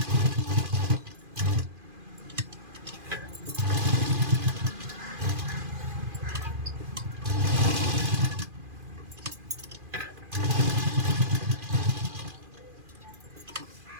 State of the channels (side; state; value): left; late; 2.4 ms